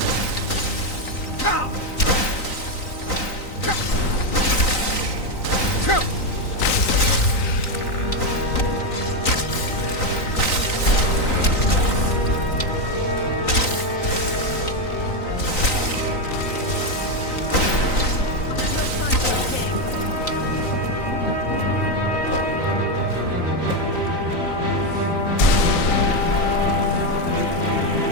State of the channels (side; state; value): right; late; 3.9 ms